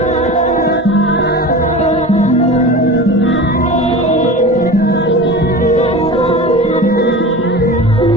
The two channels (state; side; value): normal; both; correlation 0.32